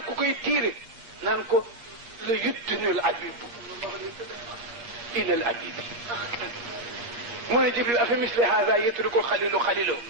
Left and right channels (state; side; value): late; left; 8.5 ms